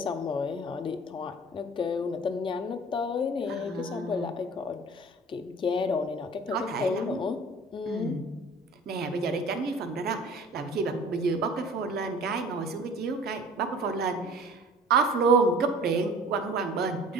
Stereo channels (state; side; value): normal; both; correlation 0.46